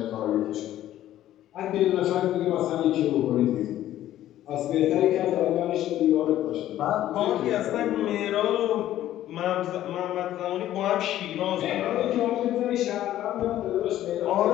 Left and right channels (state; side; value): quieter; right; 13.0 dB